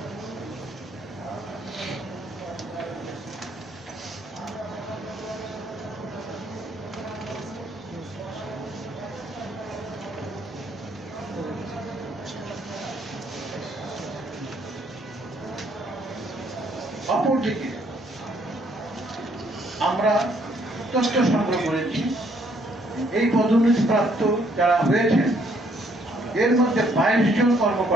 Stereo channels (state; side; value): normal; both; correlation 0.67